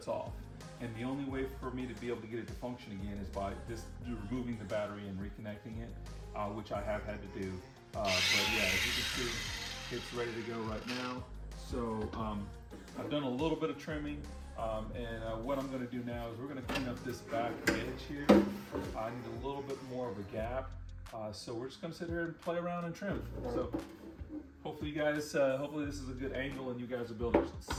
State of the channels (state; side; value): identical; both; correlation 1.00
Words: off. And the only way for me to be able to get it to function again is by just removing the battery and reconnecting it, which I have had to do. But yeah, as you can see, it's ready to go right now. So I've done a little bit of trimming, and what I'm going to do now is we're going to clean up this back edge here. I need a little bit more of a gap, so we're just going to sit here and play around and trim. So hopefully you guys, hopefully this is a good angle and you guys will be able to